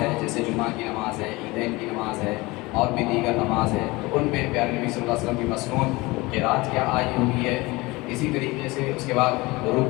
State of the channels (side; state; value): right; quieter; 22.5 dB